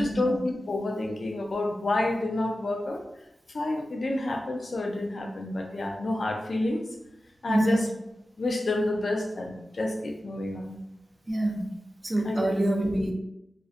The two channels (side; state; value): both; normal; correlation 0.93